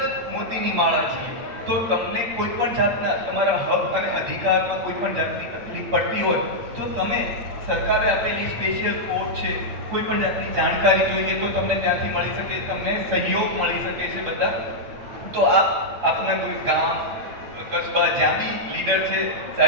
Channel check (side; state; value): left; late; 8.6 ms